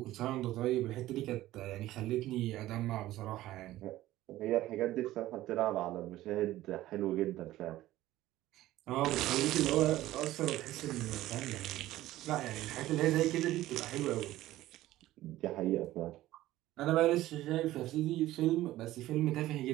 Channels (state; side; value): quieter; left; 15.5 dB